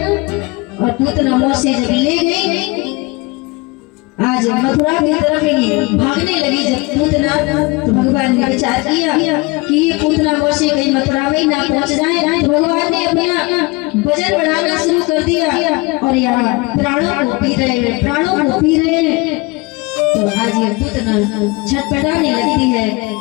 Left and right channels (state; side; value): quieter; right; 24.9 dB